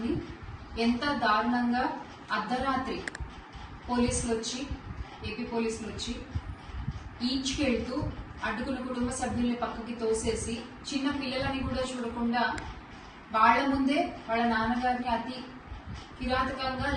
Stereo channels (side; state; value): both; identical; correlation 1.00